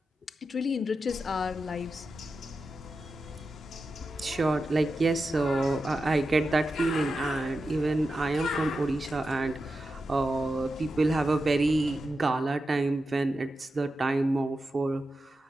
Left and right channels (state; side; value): normal; both; correlation 0.90